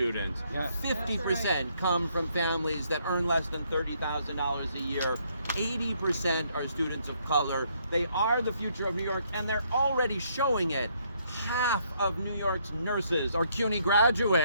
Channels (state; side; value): inverted; both; correlation -0.71